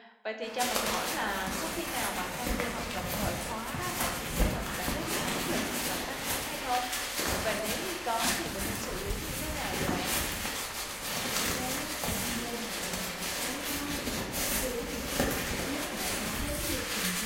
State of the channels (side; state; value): both; identical; correlation 1.00